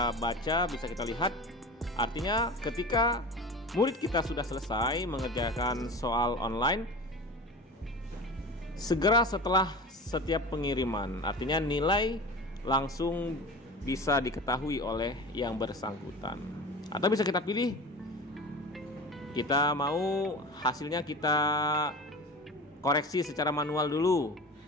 baca, bisa kita lihat. Artinya ketika murid kita sudah selesai mengerjakan soal online, segera setelah setiap pengiriman, artinya nilai langsung bisa diketahui oleh yang bersangkutan. Atau bisa kita pilih, kita mau hasilnya kita koreksi secara manual dulu,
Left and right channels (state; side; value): normal; both; correlation 0.34